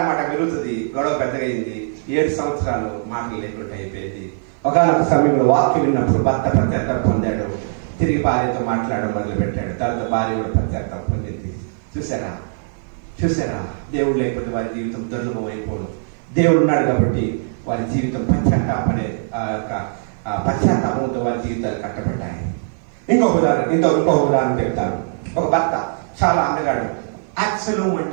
పెరుగుతుంది, గొడవ పెద్దగా అయింది. 7 సంవత్సరాలు మాటలు లేకుండా అయిపోయింది. ఒకనొక సమయంలో వాక్యం విన్నప్పుడు భర్త పశ్చాత్తాపం పొందాడు, తిరిగి భార్యతో మాట్లాడడం మొదలు పెట్టాడు. తర్వాత భార్య కూడా పశ్చాత్తాపం పొందింది. చూసారా? దేవుడు లేకపోతే వారి జీవితం దుర్లభం అయిపోదు. దేవుడు ఉన్నాడు కాబట్టి వారి జీవితం పశ్చాత్తాపంతో వారి జీవితాలు కట్టబడ్డాయి. ఇంకొక ఉదాహరణ చెప్తాను. ఒక భర్త చాలా అందగాడు, అబ్సలోం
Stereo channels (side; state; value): left; silent; 56 dB below the other